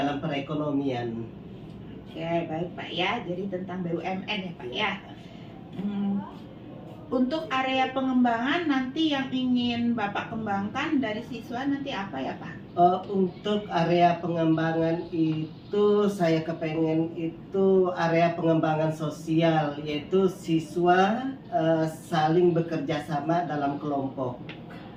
perekonomian. Oke, baik Pak ya. Jadi tentang BUMN ya Pak ya. Untuk area pengembangan nanti yang ingin Bapak kembangkan dari siswa nanti apa ya Pak? Untuk area pengembangan itu saya kepengen itu area pengembangan sosial, yaitu siswa saling bekerja sama dalam kelompok.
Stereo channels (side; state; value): both; identical; correlation 1.00